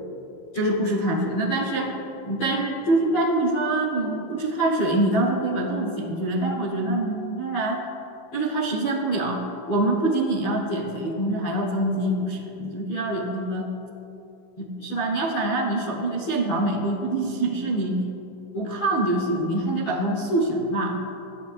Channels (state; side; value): late; right; 15 ms